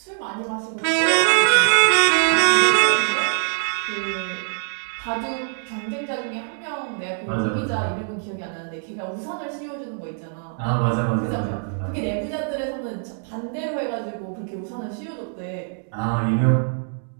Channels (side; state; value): left; silent; digital silence